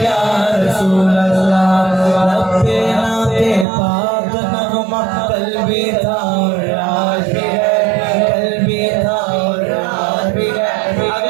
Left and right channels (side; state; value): left; drops out; at 3.7 s